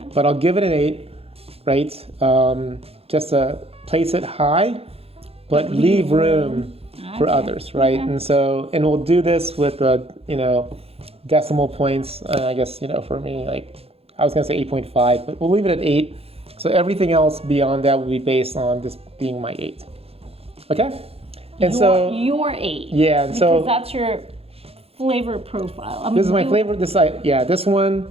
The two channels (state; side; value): late; left; 0.29 ms